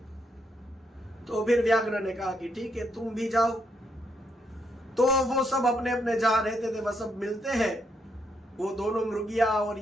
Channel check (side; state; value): both; normal; correlation 0.77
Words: तो फिर व्याघ्र ने कहा कि ठीक है तुम भी जाओ। तो वो सब अपने अपने जहां रहते थे वह सब मिलते हैं। वो दोनों मृगिया और